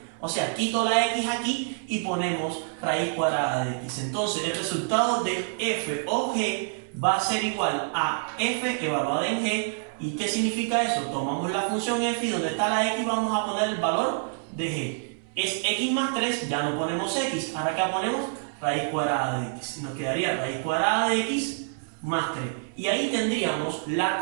O sea, quito la x aquí y ponemos raíz cuadrada de x. Entonces, el resultado de f o g va a ser igual a f evaluada en g. ¿Y qué significa eso? Tomamos la función f y donde está la x vamos a poner el valor de g. Es x más 3, ya no ponemos x. Ahora acá ponemos raíz cuadrada de x. Nos quedaría raíz cuadrada de x más 3. Y ahí tendríamos la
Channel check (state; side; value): silent; left; 60 dB below the other